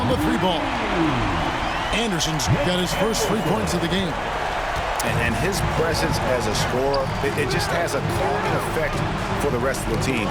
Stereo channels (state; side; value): identical; both; correlation 1.00